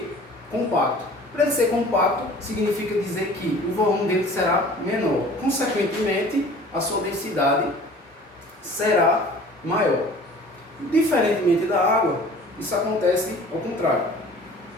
compacto. Para ele ser compacto, significa dizer que o volume dele será menor. Consequentemente, a sua densidade será maior. Diferentemente da água, isso acontece ao contrário.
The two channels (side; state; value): both; normal; correlation 0.46